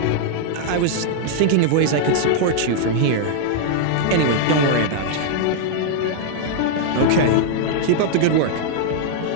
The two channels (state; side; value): different; both; correlation -0.01